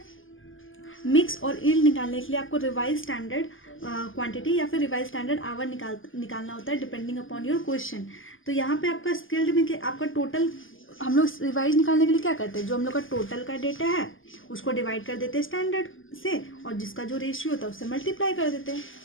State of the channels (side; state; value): right; late; 0.58 ms